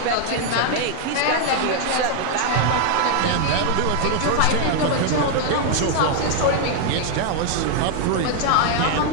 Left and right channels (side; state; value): both; different; correlation 0.00